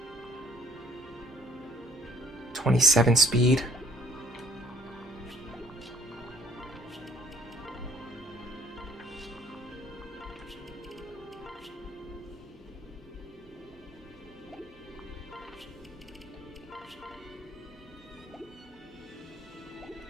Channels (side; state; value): both; normal; correlation 0.57